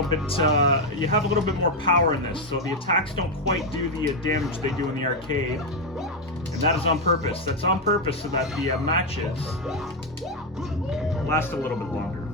bit, you have a little bit more power in this, so the attacks don't quite do the damage they do in the arcade. And that is on purpose. That's on purpose so that the matches last a little bit longer.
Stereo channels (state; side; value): normal; both; correlation 0.05